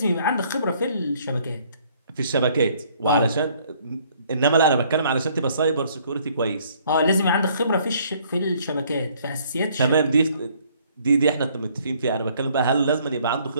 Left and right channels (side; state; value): both; inverted; correlation -0.62